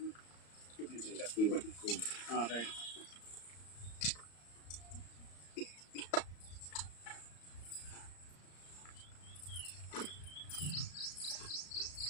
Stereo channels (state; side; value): late; right; 34 ms